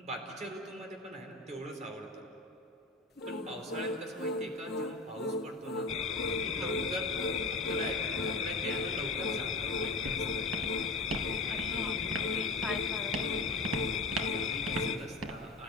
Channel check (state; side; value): quieter; right; 3.4 dB